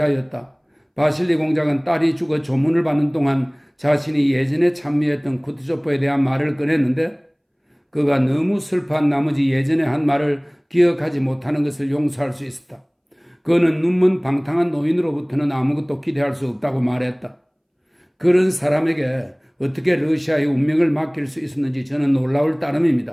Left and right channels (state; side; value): identical; both; correlation 1.00